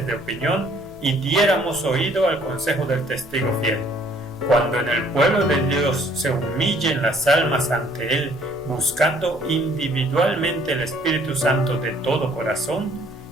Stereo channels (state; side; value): noise; left; hum, 24 dB below the sound